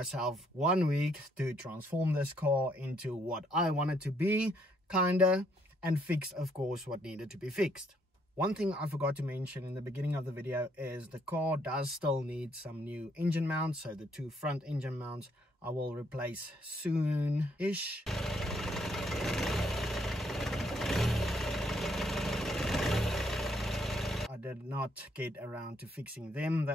1 week to transform this car into what I want it to be, kinda, and fix, of course, what needed to be fixed. One thing I forgot to mention in the beginning of the video is the car does still need some new engine mounts. So the 2 front engine mounts I will replace soon-ish. I did not get around to fixing them. They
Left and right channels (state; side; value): normal; both; correlation 0.70